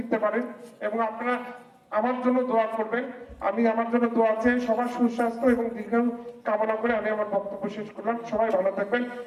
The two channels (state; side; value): identical; both; correlation 1.00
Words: পারেন। এবং আপনারা আমার জন্য দোয়া করবেন। আমি আমার জন্য দোয়া চেয়ে সবার সুস্বাস্থ্য এবং দীর্ঘায়ু কামনা করে আমি আমার বক্তব্য শেষ করলাম। সবাই ভালো থাকবেন।